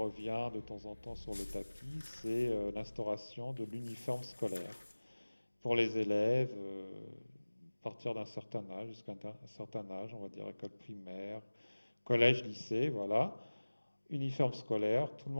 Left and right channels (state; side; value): inverted; both; correlation -1.00